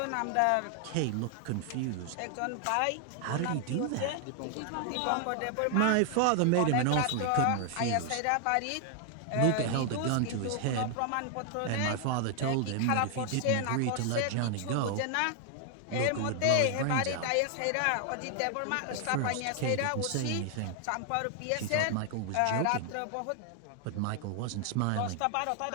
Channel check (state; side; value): different; both; correlation 0.00